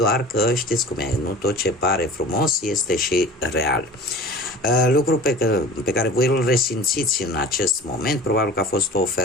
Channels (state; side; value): normal; both; correlation 0.40